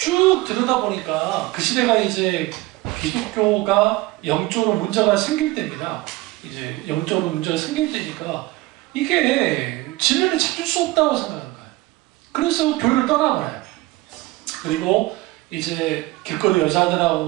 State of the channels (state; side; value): quieter; left; 19.9 dB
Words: 들여다보니까 그 시대가 이제 기독교가 영적으로 문제가 생길 때입니다. 이제 영적으로 문제가 생길 때니까 이게 진리를 찾을 수 없다고 생각하는 거예요. 그래서 교회를 떠나버려요. 그리고 이제 길거리 여자들하고